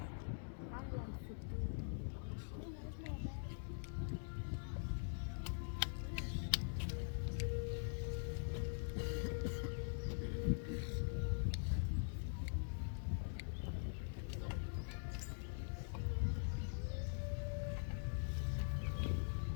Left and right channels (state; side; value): silent; right; digital silence